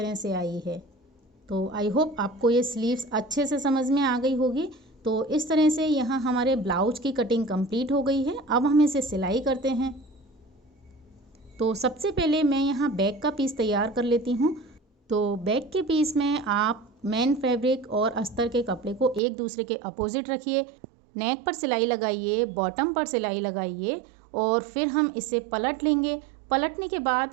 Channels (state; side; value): drops out; left; at 19.2 s